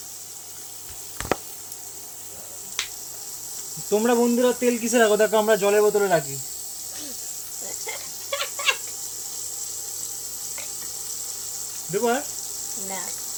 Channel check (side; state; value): both; identical; correlation 1.00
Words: তোমরা বন্ধুরা তেল কিসে রাখো? দেখো আমরা জলের বোতলে রাখি। দেখো না,